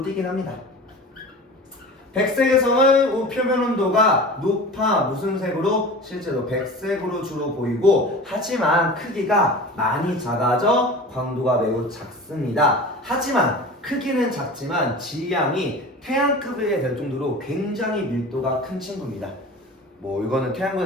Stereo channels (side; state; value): both; normal; correlation 0.36